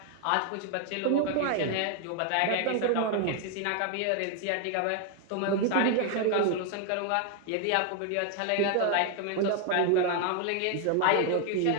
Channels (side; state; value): both; different; correlation 0.00